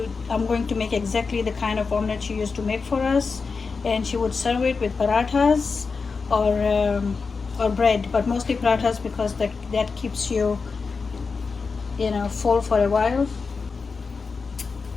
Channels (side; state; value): right; quieter; 4.7 dB